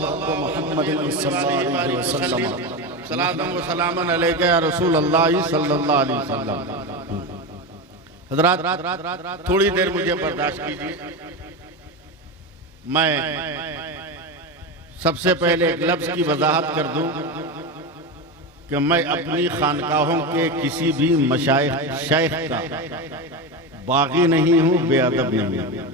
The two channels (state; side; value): normal; both; correlation 0.18